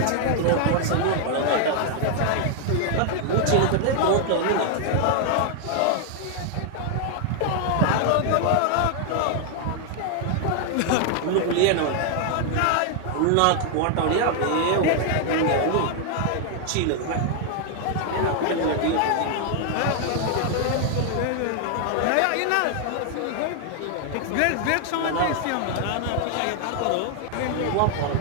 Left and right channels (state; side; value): different; both; correlation 0.00